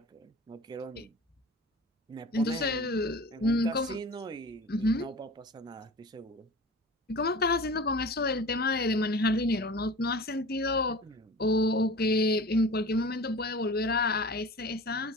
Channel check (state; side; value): normal; both; correlation 0.38